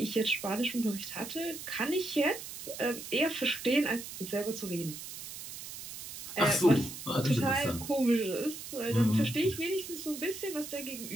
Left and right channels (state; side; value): noise; right; hiss, 10 dB below the sound